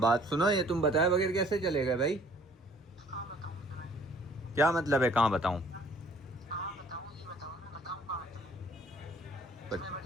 सुनो, ये तुम बताए बगैर कैसे चले गए भाई? कहाँ बताऊँ तुम्हें? क्या मतलब है कहाँ बताऊँ? कहाँ बताऊँ ये बताओ, मैं बताऊँ कहाँ तुम्हें? तुम्हें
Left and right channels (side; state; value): both; normal; correlation 0.57